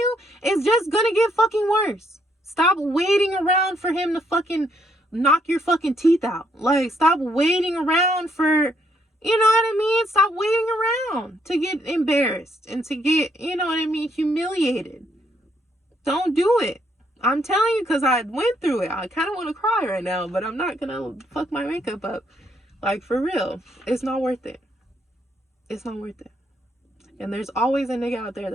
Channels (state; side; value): normal; both; correlation 0.72